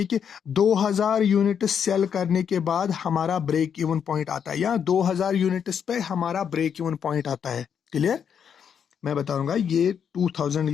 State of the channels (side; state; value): right; quieter; 7.7 dB